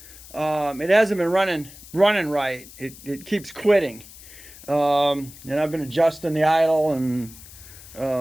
It hasn't been running right. It keeps quitting, and I've been adjusting the idle and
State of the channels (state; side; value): noise; left; hiss, 18 dB below the sound